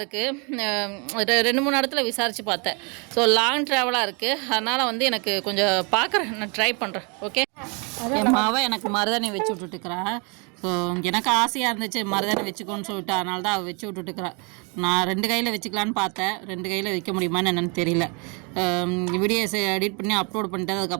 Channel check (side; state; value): left; quieter; 33.2 dB